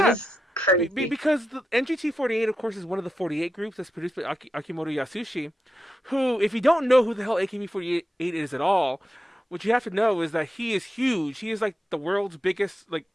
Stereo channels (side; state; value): both; normal; correlation 0.89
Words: crazy. Because the NGT48, of course, is one of the 48 groups that's produced by Akimoto Yasushi, who, if you don't know who the hell AKB48 is at all, what you have to know is that he is huge. He is, like, the world's biggest, like,